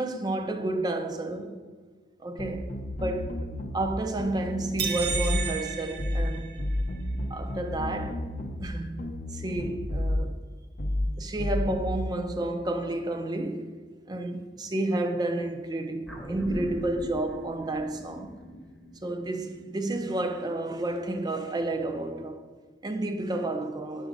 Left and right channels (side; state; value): both; normal; correlation 0.72